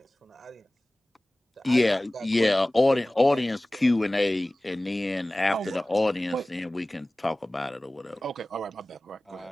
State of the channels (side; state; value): both; normal; correlation 0.98